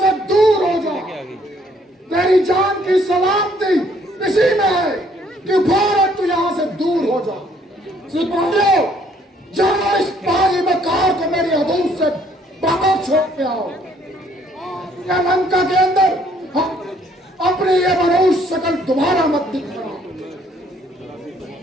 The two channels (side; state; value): both; normal; correlation 0.64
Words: दूर हो जा। तेरी जान की सलामती इसी में है कि फौरन तू यहाँ से दूर हो जा। सिपाहियों, जाओ इस बागी मकार को मेरी हदूद से बाहर छोड़ के आओ। या लंका के अंदर अपनी ये मनहूस शक्ल दोबारा मत दिखाना।